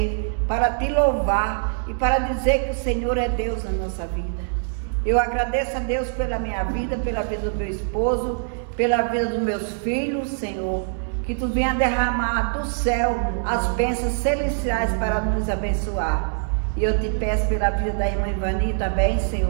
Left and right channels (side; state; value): left; silent; digital silence